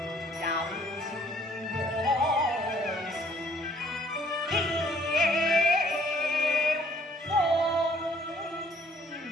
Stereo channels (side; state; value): both; normal; correlation 0.60